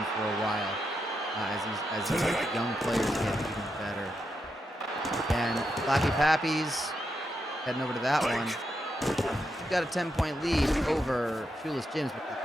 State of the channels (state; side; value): normal; both; correlation 0.84